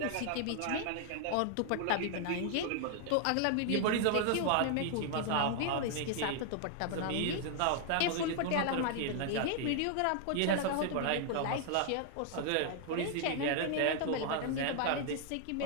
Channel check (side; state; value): both; different; correlation 0.00